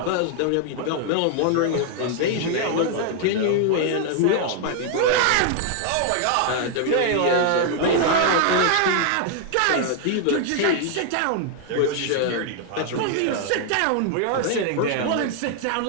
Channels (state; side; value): different; both; correlation 0.00